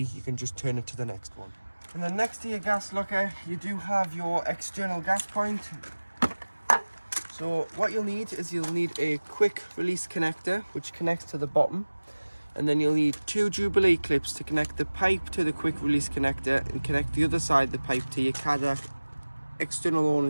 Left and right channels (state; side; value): inverted; both; correlation -1.00